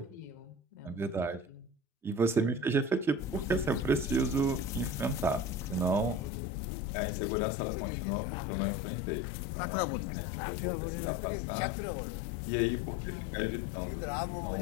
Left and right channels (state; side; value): drops out; right; at 6.3 s